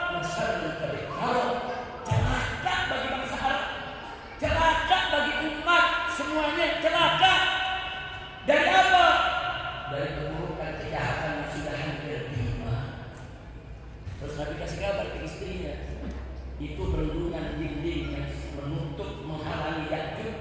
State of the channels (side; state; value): both; identical; correlation 1.00